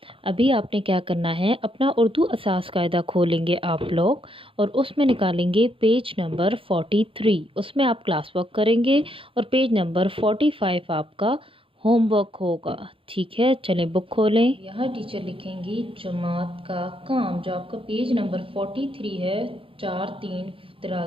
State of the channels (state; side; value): late; left; 0.26 ms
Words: अभी आपने क्या करना है, अपना उर्दू असास कायदा खोलेंगे आप लोग, और उसमें निकालेंगे पेज नंबर 43। उसमें आप क्लास वर्क करेंगे, और पेज नंबर 45 आपका होमवर्क होगा। ठीक है, चलें बुक खोलें। यहाँ टीचर लिखेंगी जमात का काम, जो आपका पेज नंबर 43 है,